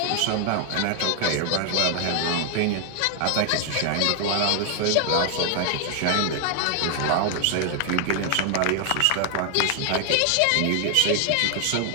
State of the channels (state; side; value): different; both; correlation 0.00